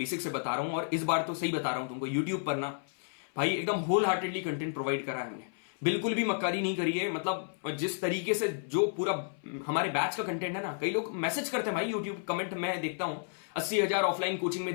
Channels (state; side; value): silent; right; 57 dB below the other